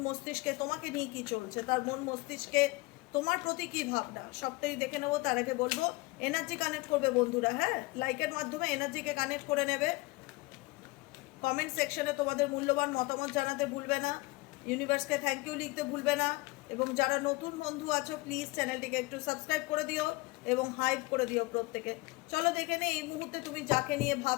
মস্তিষ্কে তোমাকে নিয়ে কি চলছে, তার মন মস্তিষ্কে তোমার প্রতি কি ভাবনা, সবটাই দেখে নেবো। তার আগে বলবো এনার্জি কানেক্ট করবে বন্ধুরা, হ্যাঁ, লাইকের মাধ্যমে এনার্জিকে কানেক্ট করে নেবে। কমেন্ট সেকশনে তোমাদের মূল্যবান মতামত জানাতে ভুলবে না, ইউনিভার্সকে থ্যাংক ইউ লিখতে ভুলবে না, এবং যারা নতুন বন্ধু আছো প্লিজ চ্যানেলটিকে একটু সাবস্ক্রাইব করে দিও এবং হাইপ করে দিও প্রত্যেকে। চলো দেখে নিই এই মুহূর্তে তুমি যাকে নিয়ে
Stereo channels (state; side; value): quieter; right; 23.1 dB